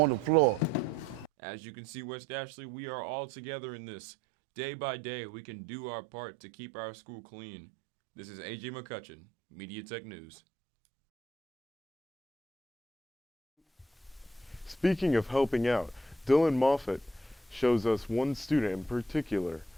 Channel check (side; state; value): both; normal; correlation 0.68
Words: the floor. As you can see, West Ashley, we are all together in this. Day by day, we can do our part to keep our school clean. This is AJ McCutchen, Media Tech News. Speaking of helping out, Dillon Moffatt shows us one student in particular